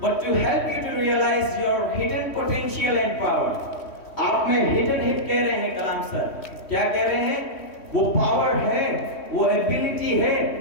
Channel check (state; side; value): late; right; 3.1 ms